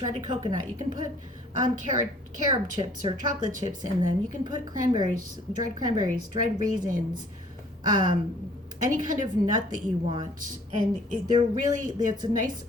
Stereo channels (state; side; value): normal; both; correlation 0.56